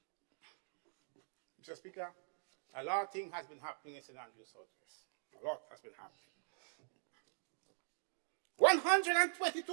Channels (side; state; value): left; silent; digital silence